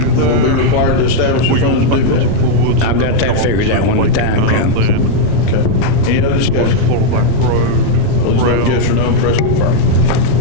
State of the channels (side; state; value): both; different; correlation -0.01